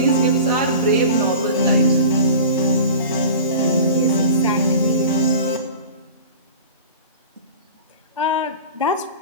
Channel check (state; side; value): inverted; both; correlation -0.38